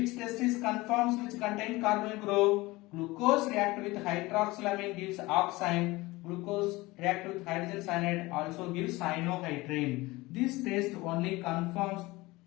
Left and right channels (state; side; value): quieter; right; 21.1 dB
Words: test is confirms which contains carbonyl group? glucose react with hydroxylamine gives oxime. Glucose react with hydrogen cyanide also gives cyanohydrin. This test only confirms